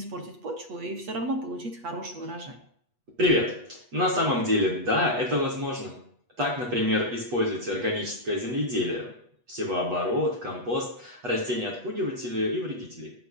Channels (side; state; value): left; late; 8.2 ms